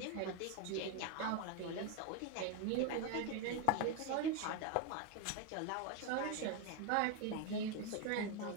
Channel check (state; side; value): different; both; correlation 0.02